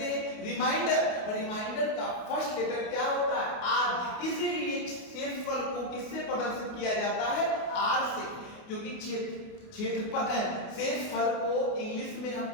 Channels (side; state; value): right; late; 28 ms